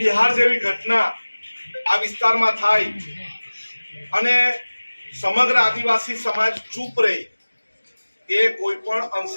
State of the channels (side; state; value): both; inverted; correlation -1.00